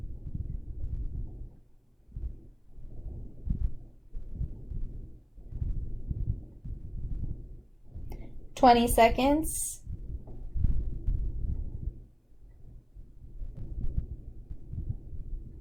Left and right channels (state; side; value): identical; both; correlation 1.00